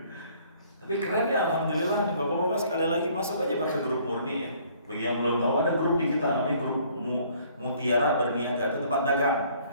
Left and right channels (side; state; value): both; inverted; correlation -0.60